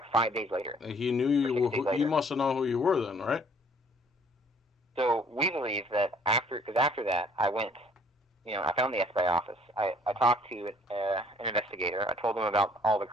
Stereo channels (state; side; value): normal; both; correlation 0.58